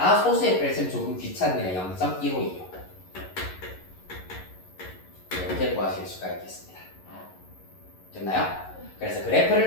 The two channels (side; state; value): right; late; 11 ms